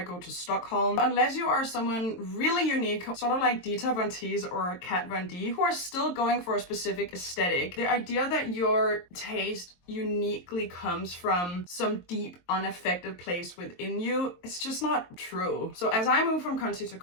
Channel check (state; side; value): late; right; 23 ms